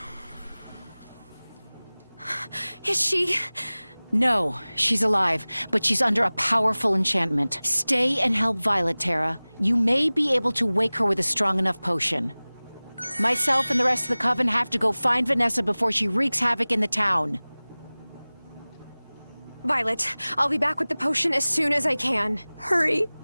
Is she? No, she's alive, but she's under a powerful enchantment. Stay and help Violet, Terra. You may be able to wake her with a strong enough potion. Myself and the rest of the coven have to go find Vanessa before she wreaks havoc in the town. Violet, I'll be back with the potion as soon as I can. Hurry.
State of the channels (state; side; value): inverted; both; correlation -0.99